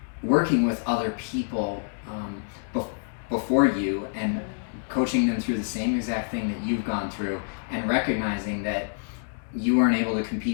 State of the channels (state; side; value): silent; right; digital silence